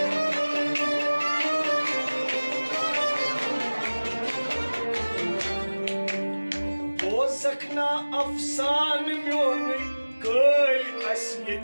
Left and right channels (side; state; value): both; inverted; correlation -1.00